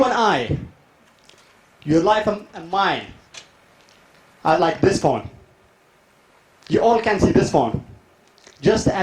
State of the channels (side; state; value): both; identical; correlation 1.00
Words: and I, your life and mine, are like this phone. You all can see this phone. Just